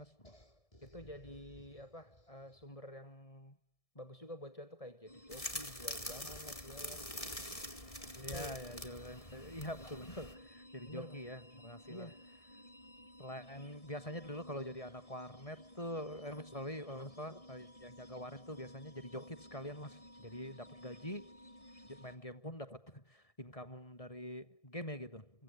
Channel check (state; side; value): late; right; 1.7 ms